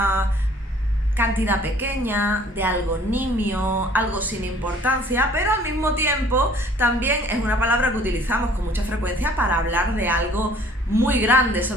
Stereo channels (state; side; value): normal; both; correlation 0.54